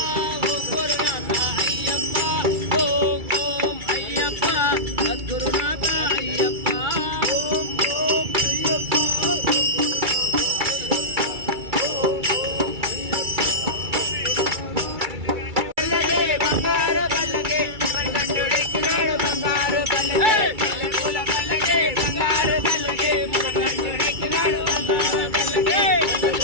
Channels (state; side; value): late; left; 2.3 ms